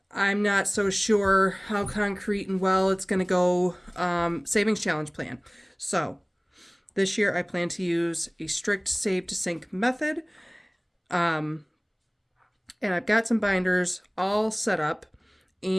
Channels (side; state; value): both; identical; correlation 1.00